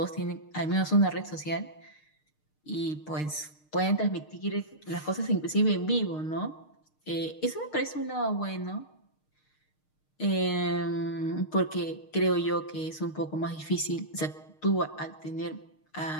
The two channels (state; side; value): late; right; 6.5 ms